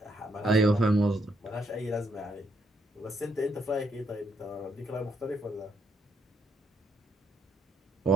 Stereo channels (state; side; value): normal; both; correlation 0.74